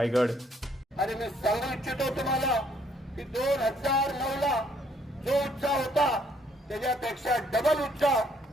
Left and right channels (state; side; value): normal; both; correlation 0.66